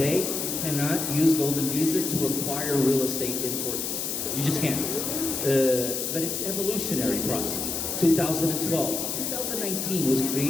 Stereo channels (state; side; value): noise; left; hiss, 2 dB below the sound